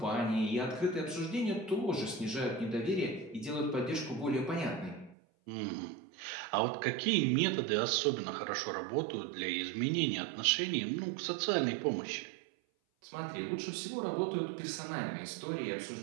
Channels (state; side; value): drops out; left; at 5.2 s